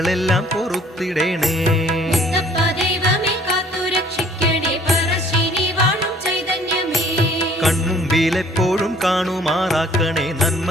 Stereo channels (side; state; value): both; normal; correlation 0.56